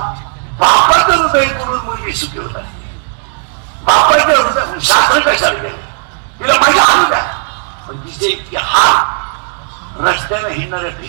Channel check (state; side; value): silent; left; 59 dB below the other